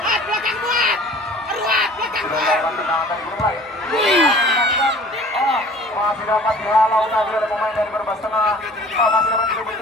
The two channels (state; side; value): normal; both; correlation 0.48